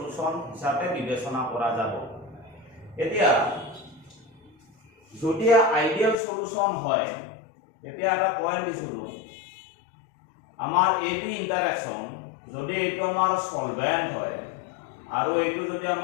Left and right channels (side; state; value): right; drops out; at 6.2 s